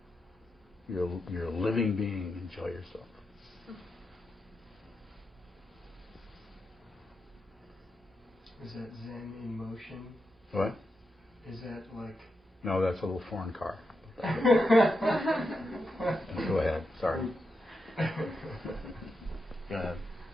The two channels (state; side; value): normal; both; correlation 0.86